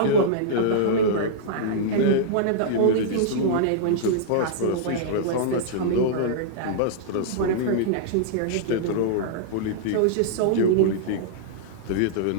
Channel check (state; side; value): different; both; correlation -0.02